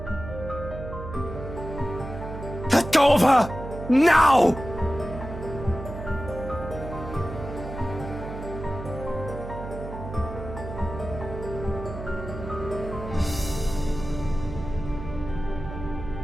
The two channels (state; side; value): noise; right; hum, 9 dB below the sound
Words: Let go of her! Now!